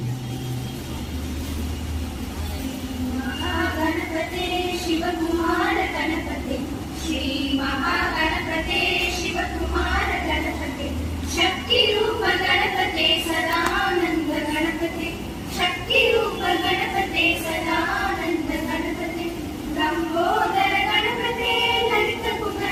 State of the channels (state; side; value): identical; both; correlation 1.00